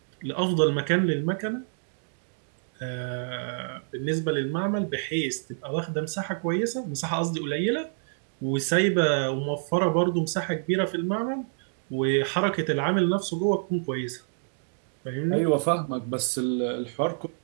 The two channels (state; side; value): silent; left; digital silence